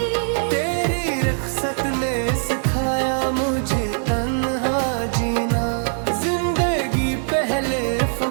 तेरी रुखसत ने सिखाया मुझे तन्हा जीना, जिंदगी पहले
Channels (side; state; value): left; silent; digital silence